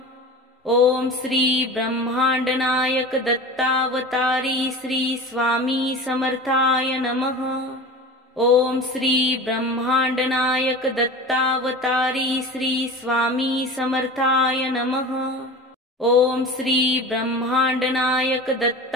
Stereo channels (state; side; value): normal; both; correlation 0.34